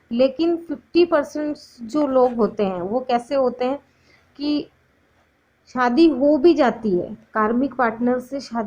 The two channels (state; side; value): identical; both; correlation 1.00